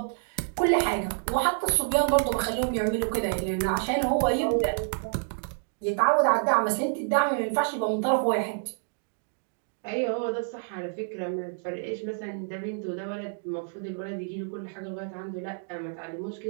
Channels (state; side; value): silent; left; digital silence